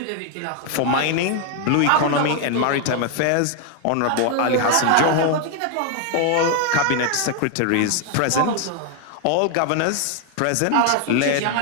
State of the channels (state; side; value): different; both; correlation 0.00